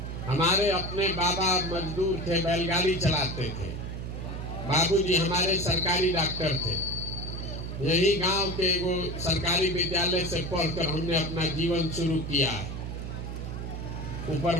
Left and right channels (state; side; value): noise; right; hum, 6 dB below the sound